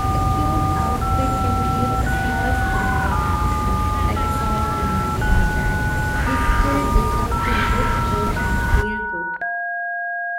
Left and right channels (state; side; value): identical; both; correlation 1.00